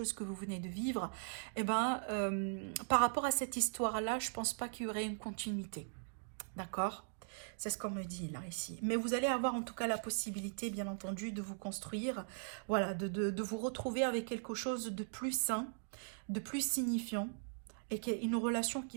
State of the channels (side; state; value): left; silent; digital silence